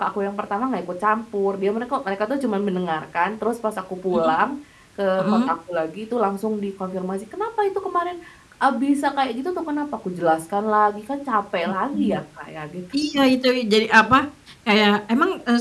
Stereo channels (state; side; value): identical; both; correlation 1.00